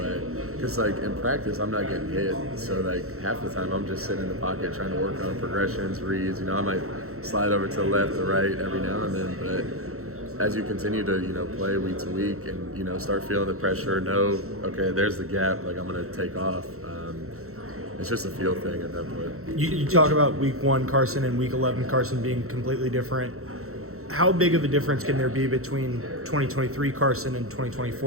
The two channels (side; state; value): left; late; 0.63 ms